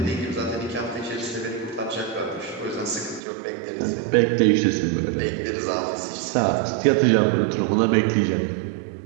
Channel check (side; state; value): left; drops out; at 3.2 s